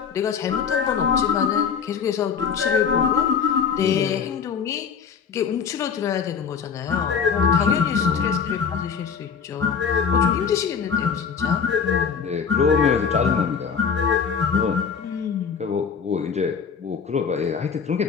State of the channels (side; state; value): right; quieter; 6.5 dB